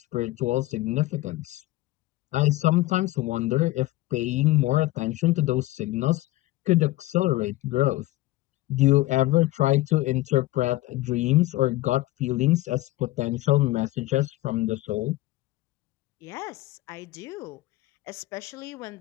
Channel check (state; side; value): quieter; right; 17.8 dB